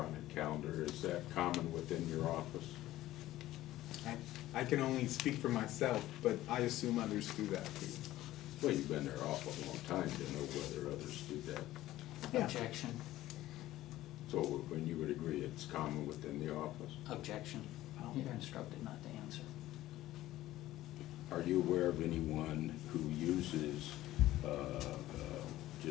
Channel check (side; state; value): right; quieter; 15.3 dB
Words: calendar. Is that common within your office? I can only speak for myself, but I assume others do that too. Well, you've been there awful long time to know whether others do that. Yeah. Objection. So when you would agree it's common within the office? Objection. You're instructed not to answer. Are you aware of anyone who uses